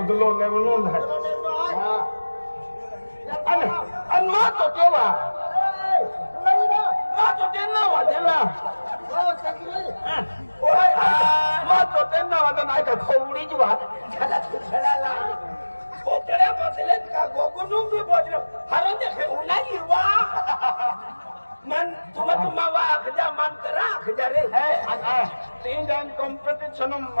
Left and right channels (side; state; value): both; inverted; correlation -1.00